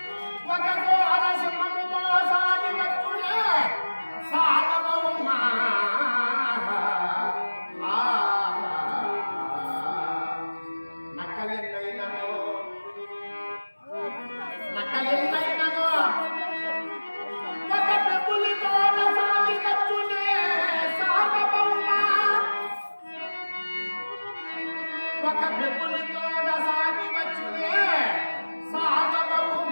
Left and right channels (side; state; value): both; inverted; correlation -1.00